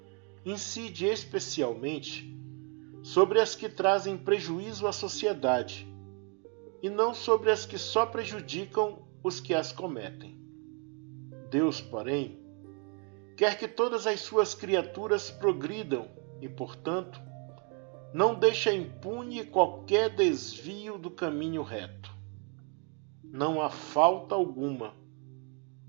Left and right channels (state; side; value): quieter; left; 37.1 dB